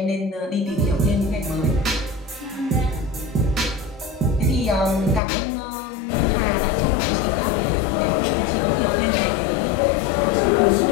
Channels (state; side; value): drops out; right; at 5.2 s